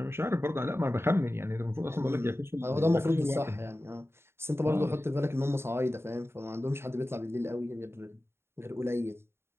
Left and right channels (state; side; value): late; left; 0.12 ms